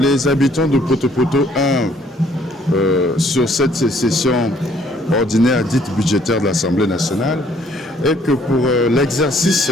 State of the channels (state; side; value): normal; both; correlation 0.62